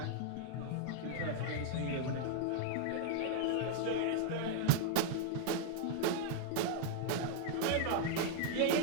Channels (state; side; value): different; both; correlation 0.00